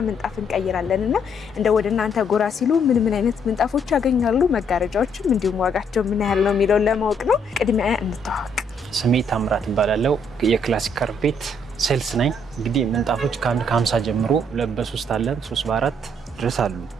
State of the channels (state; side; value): normal; both; correlation 0.69